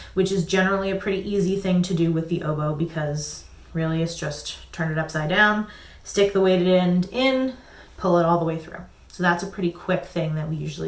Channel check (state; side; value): identical; both; correlation 1.00